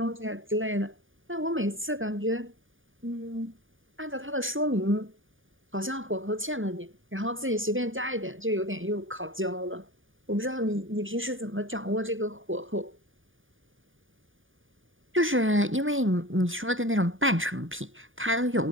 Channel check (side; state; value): left; late; 0.58 ms